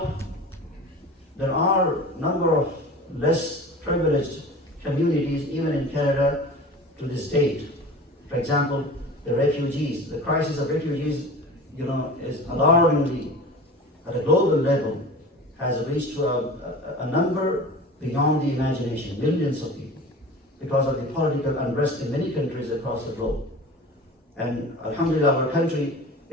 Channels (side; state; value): both; normal; correlation 0.37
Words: There are a number of less privileged communities, even in Canada, to this date. For example, the refugees. The crisis of refugees, is alarmingly, at a global level, has reached to a number beyond the imagination, millions of people, because of the political unrest in many countries across the globe. And alhamdulillah, our country